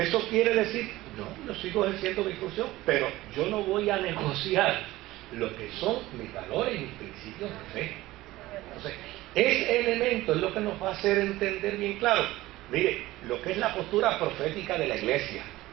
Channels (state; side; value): quieter; left; 17.5 dB